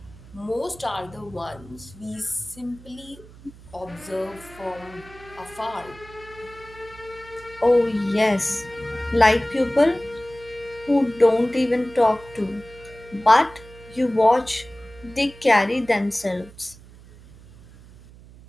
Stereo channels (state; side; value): noise; right; hum, 21 dB below the sound